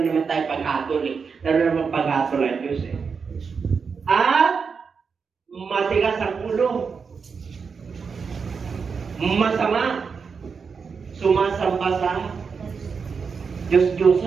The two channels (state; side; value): quieter; left; 5.6 dB